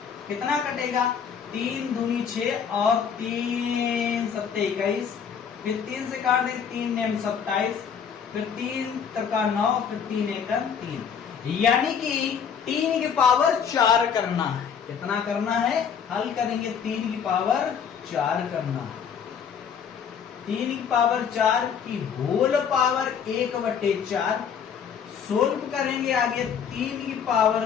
कितना कटेगा, 3 दूनी 6 और 3 7 21, फिर 3 से काट दे, 3 नेम 27, फिर 3 तका 9, फिर 3 1 3, यानी कि 3 की पावर 4 करना है। कितना करना है, हल करेंगे, 3 की पावर 4 करना है। 3 की पावर 4 की होल पावर 1/4 सोल्व करेंगे आगे, 3 की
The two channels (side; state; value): right; quieter; 7.2 dB